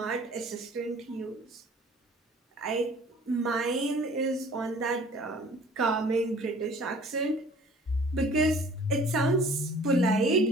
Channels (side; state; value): both; normal; correlation 0.51